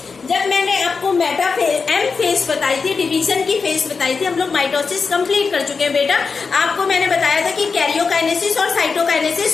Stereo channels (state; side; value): quieter; right; 5.0 dB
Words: जब मैंने आपको मेटाफेज एम फेज बताई थी, डिवीजन की फेज बताई थी, हम लोग माइटोसिस कंप्लीट कर चुके हैं बेटा। आपको मैंने बताया था कि कैरियोकाइनेसिस और